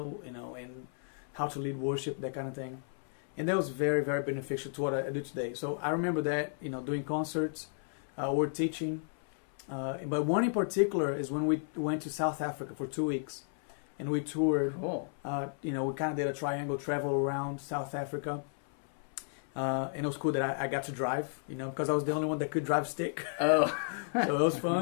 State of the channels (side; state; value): right; silent; 56 dB below the other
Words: and how to lead worship, that kind of thing. And that was very, very beneficial to what I do today. So I remember that, doing concerts, or teaching. But one in particular is when we went to South Africa for 2 weeks, and we toured. Cool. We kind of did a triangle travel around South Africa. And it was cool that I got to drive, because I was the only one that could drive stick. Oh. So it was